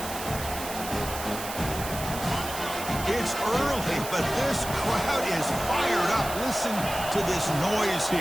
It's early, but this crowd is fired up. Listen to this noise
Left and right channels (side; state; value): right; noise; hiss, 9 dB below the sound